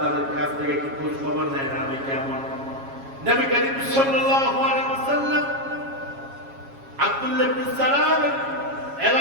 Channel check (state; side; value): late; left; 7.3 ms